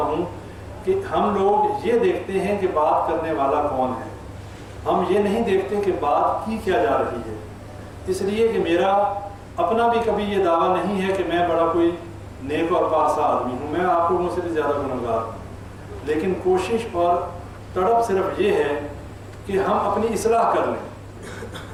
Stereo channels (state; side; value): identical; both; correlation 1.00